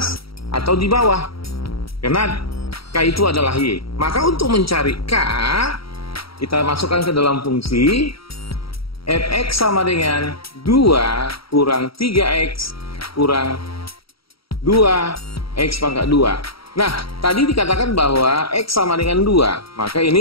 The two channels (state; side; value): late; right; 0.75 ms